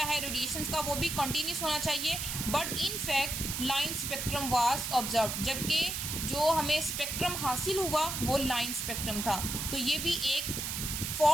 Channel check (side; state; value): right; noise; hiss, 3 dB below the sound